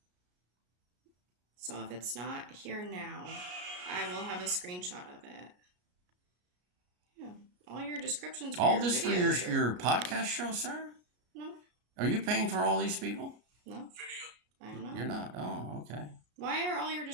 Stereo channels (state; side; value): late; left; 33 ms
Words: So if it's not here now, I will have a screenshot of it. Yeah, all your descriptions. All this for videos your are- podcast show, sir? No, Are you paying for all these people? no, I'm not. You're not. Oh, okay. Why are all your